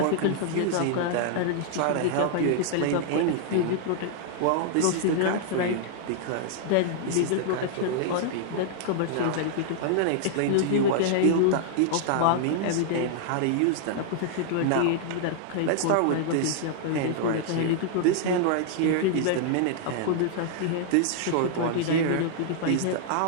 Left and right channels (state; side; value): different; both; correlation -0.01